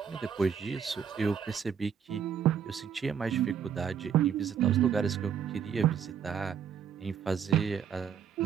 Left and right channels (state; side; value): quieter; left; 7.8 dB